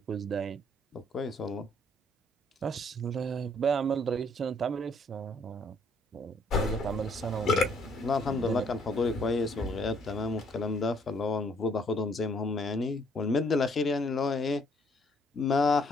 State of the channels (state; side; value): normal; both; correlation 0.65